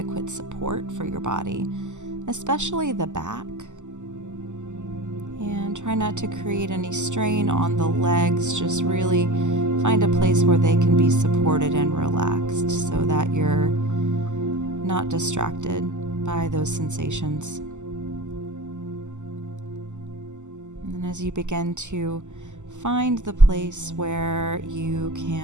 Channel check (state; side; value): late; left; 0.84 ms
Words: support for your body, especially the back. And try not to create any strain on the legs. Just really find a place where they can be supported and relaxed so that you're not distracted by those sensations. And as you begin to find the place where you